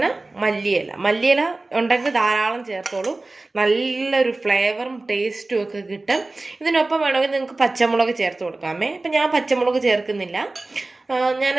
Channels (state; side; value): quieter; left; 3.1 dB